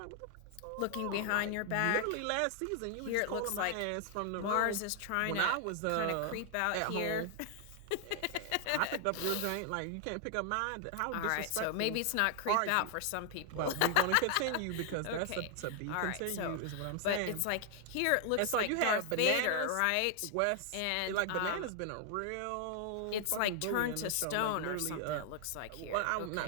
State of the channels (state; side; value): different; both; correlation 0.00